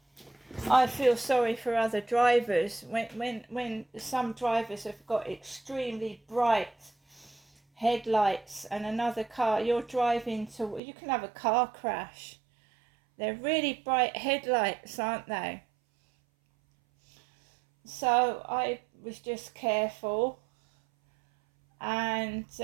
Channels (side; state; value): left; drops out; at 10.8 s